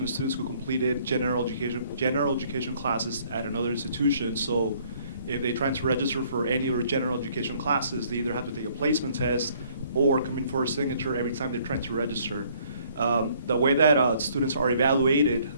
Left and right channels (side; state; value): both; inverted; correlation -0.62